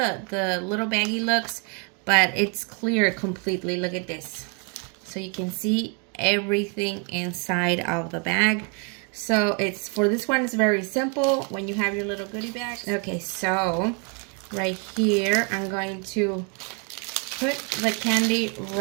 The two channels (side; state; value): left; quieter; 36.7 dB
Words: little baggie looks, but it's clear completely. Look at this. So you can see everything inside of the bag. So it's, for this one, it's very simple when you have your little goodie bag. Okay, so right here, I'm going to put the candy